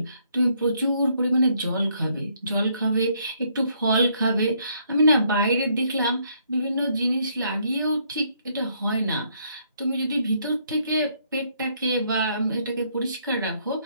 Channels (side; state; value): both; inverted; correlation -0.69